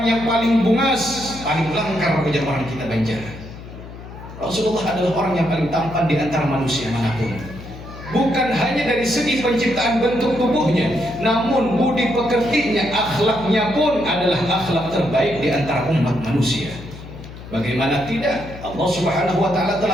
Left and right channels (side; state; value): left; noise; hum, 14 dB below the sound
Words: yang paling bungas, paling langkar ujar orang kita Banjar. Rasulullah adalah orang yang paling tampan di antara manusia manapun. Bukan hanya dari segi penciptaan bentuk tubuhnya, namun budi pekertinya, akhlaknya pun adalah akhlak terbaik di antara umat manusia. Bagaimana tidak? Allah Subhanahu wa taala